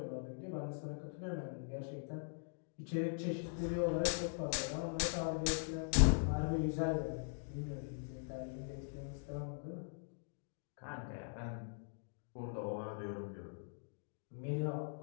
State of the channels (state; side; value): silent; right; digital silence